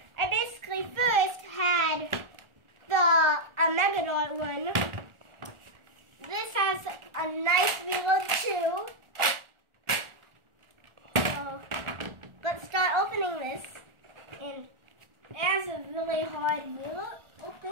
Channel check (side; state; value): left; late; 1.4 ms